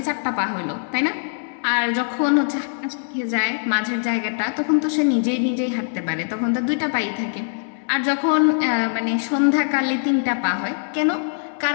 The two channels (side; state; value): right; silent; digital silence